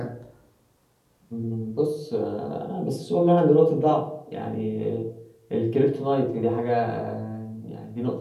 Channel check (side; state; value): both; identical; correlation 1.00